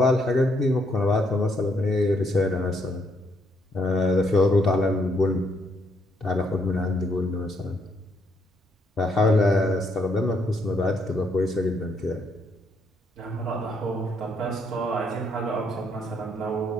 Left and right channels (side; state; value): both; normal; correlation 0.73